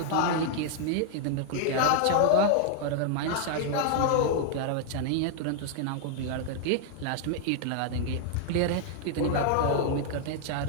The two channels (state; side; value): different; both; correlation 0.00